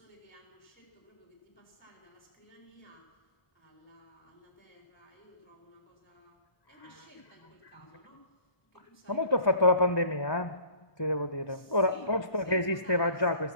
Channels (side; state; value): right; late; 1.2 ms